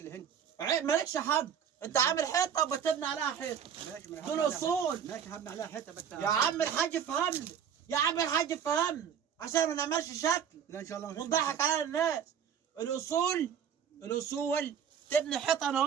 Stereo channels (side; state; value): left; quieter; 8.1 dB